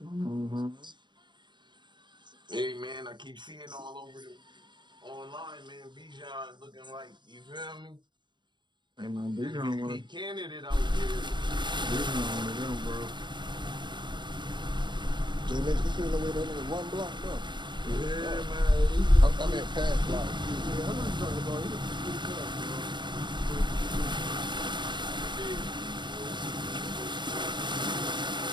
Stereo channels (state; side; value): late; left; 0.22 ms